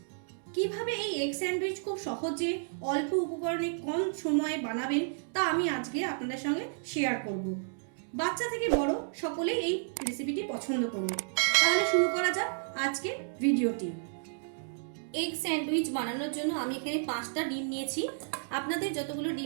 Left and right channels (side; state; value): left; silent; digital silence